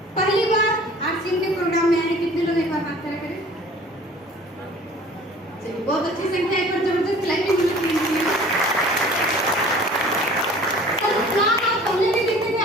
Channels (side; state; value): both; normal; correlation 0.48